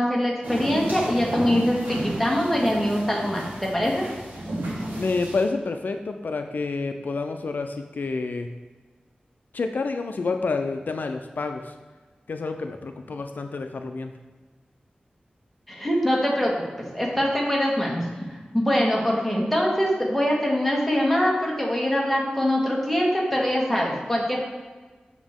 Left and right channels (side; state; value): both; normal; correlation 0.93